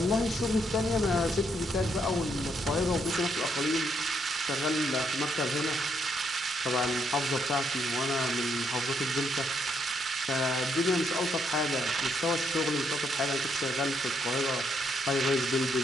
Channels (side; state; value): both; normal; correlation 0.75